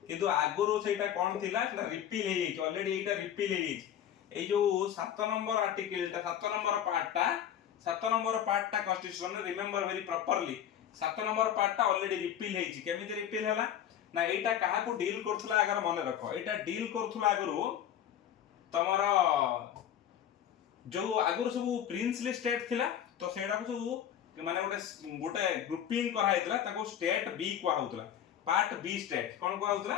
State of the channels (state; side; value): quieter; right; 10.1 dB